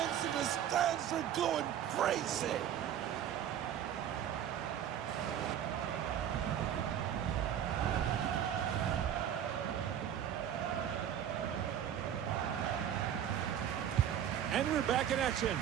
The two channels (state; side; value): quieter; left; 9.8 dB